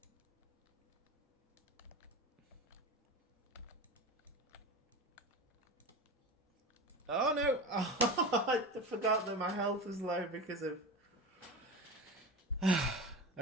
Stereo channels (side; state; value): both; normal; correlation 0.27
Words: Oh no! Oh, I forgot that my health was low because of...